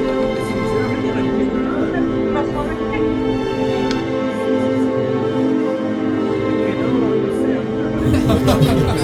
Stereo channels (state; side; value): identical; both; correlation 1.00